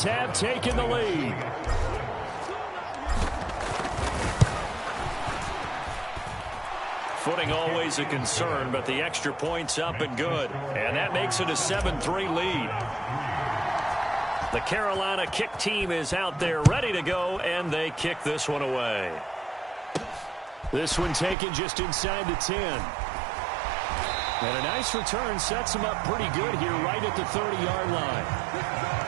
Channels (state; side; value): drops out; left; at 21.4 s